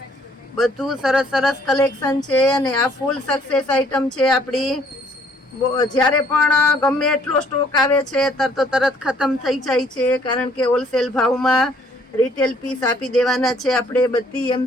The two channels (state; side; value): normal; both; correlation 0.62